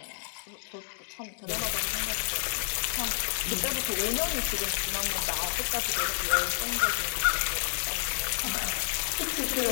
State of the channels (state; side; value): silent; right; digital silence